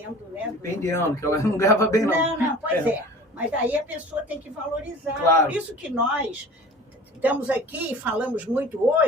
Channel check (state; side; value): normal; both; correlation 0.42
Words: né? Dependendo, que ela não ganhava bem, não. Não, pois é. Mas aí a pessoa tem que valorizar. Claro. Por isso que nós estamos aqui e falamos muito